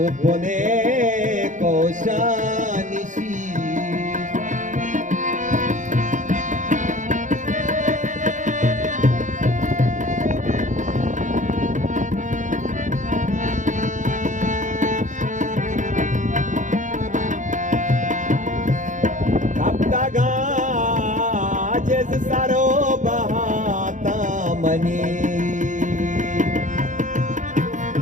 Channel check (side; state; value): left; late; 0.36 ms